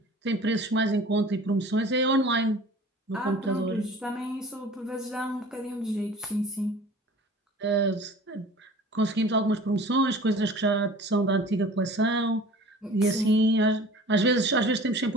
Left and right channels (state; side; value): normal; both; correlation 0.44